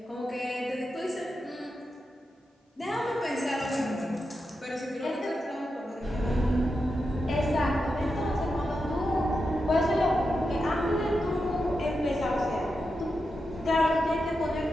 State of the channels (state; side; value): normal; both; correlation 0.88